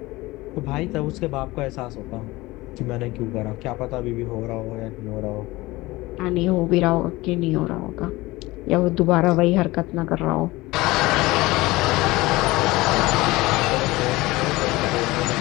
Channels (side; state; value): right; quieter; 20.3 dB